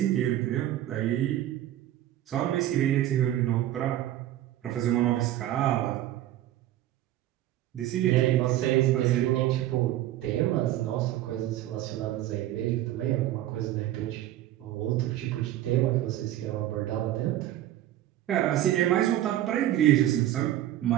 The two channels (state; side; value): quieter; left; 13.4 dB